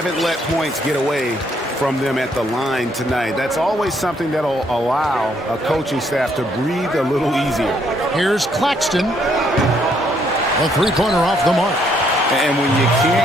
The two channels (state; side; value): normal; both; correlation 0.70